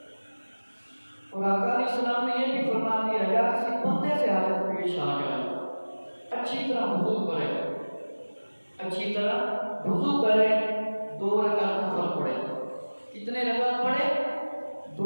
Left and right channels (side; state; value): both; inverted; correlation -1.00